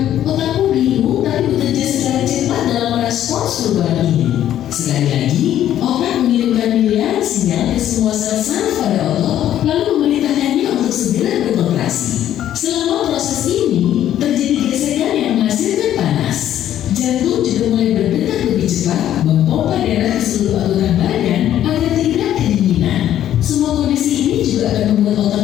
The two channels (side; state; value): right; quieter; 11.5 dB